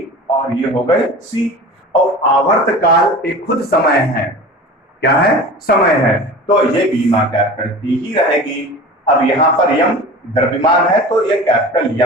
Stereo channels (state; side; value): normal; both; correlation 0.36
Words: और ये हो गए सी, और आवर्तकाल एक खुद समय है, क्या है, समय है, तो ये बीमा कैपिटल टी ही रहेगी। अब यहाँ पर यम द्रव्यमान है तो ये कैपिटल